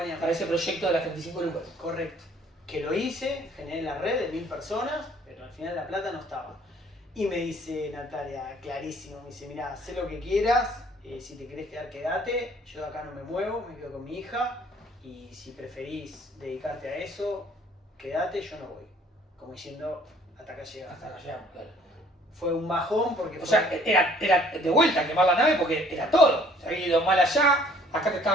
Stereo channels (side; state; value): both; normal; correlation 0.57